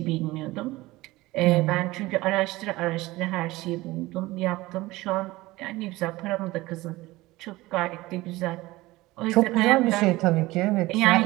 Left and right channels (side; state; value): left; quieter; 19.4 dB